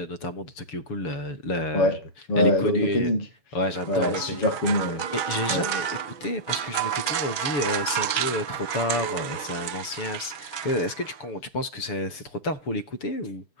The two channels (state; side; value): late; right; 6.8 ms